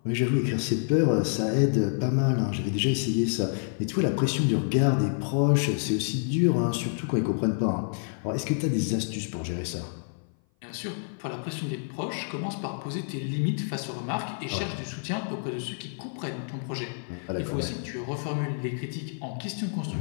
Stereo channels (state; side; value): silent; right; 56 dB below the other